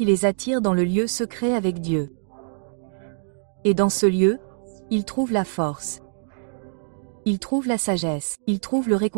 les attire dans le lieu secret avec Dieu. Et dans ce lieu, ils trouvent la force. Ils trouvent la sagesse, ils trouvent le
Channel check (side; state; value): left; silent; digital silence